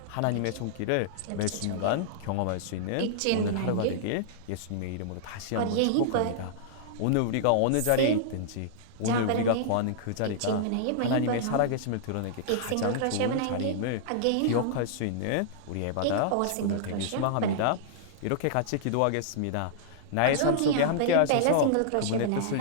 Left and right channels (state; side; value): different; both; correlation -0.02